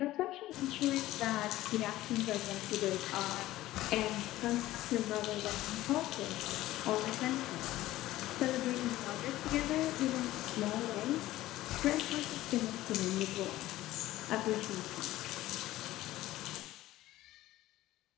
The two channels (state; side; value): quieter; right; 15.9 dB